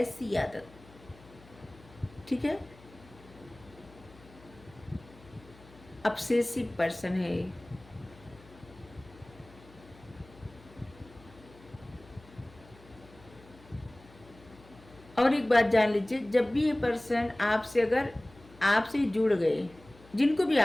आदत, ठीक है। ऑब्सेसिव पर्सन है। और एक बात जान लीजिए, जब भी ये पर्सन आपसे अगर आपसे जुड़ गए, जिनको भी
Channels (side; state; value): left; noise; hum, 23 dB below the sound